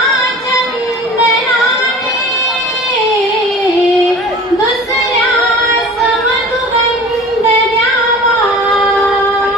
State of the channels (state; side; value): normal; both; correlation 0.41